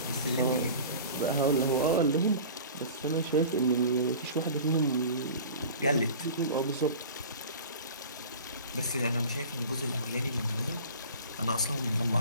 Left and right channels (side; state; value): both; inverted; correlation -0.40